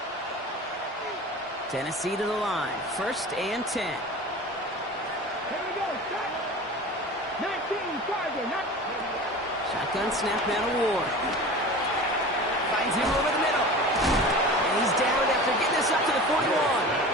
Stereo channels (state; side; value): normal; both; correlation 0.36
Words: Tennessee to the line. First and 10. Here we go, shot. 19 target. Shotgun snap now to Ward. Finds him over the middle. And he's down after getting this up to the 41.